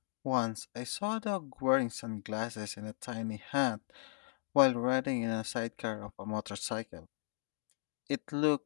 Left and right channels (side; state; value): right; silent; digital silence